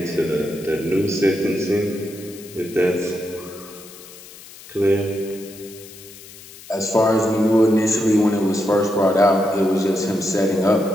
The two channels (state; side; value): noise; left; hiss, 18 dB below the sound